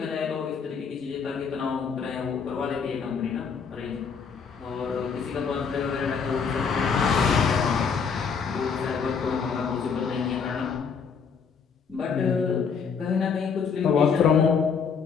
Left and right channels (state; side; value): quieter; right; 6.1 dB